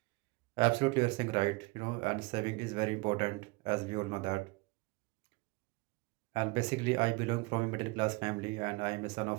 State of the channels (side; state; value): left; quieter; 25.4 dB